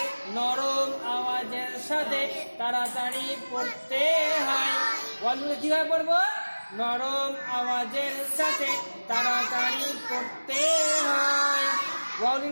নরম আওয়াজের সাথে তাড়াতাড়ি পড়তে হয়। ওয়াও লিনকে কিভাবে পড়বো? নরম আওয়াজের সাথে তাড়াতাড়ি পড়তে হয়। ওয়াও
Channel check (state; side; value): inverted; both; correlation -1.00